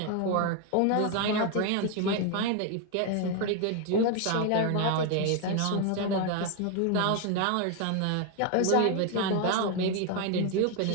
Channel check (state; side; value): different; both; correlation 0.01